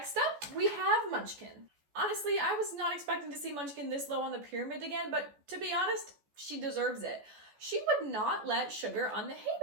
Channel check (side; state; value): left; late; 14 ms